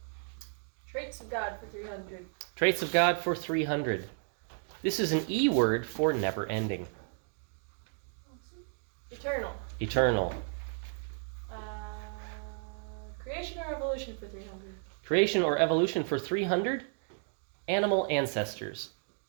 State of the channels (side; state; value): left; silent; 56 dB below the other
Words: Traits of God for 300. Traits of God for 300. This is an E word for never ending. Eternal. Eternal. Creation or evolution for 300. Creation or evolution for 300. Animal ancestors.